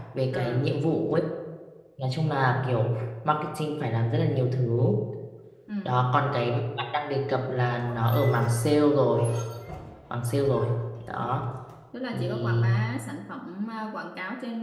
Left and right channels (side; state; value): both; identical; correlation 1.00